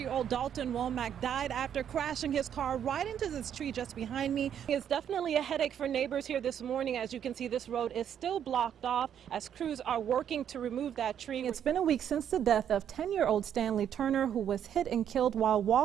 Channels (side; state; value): left; quieter; 9.3 dB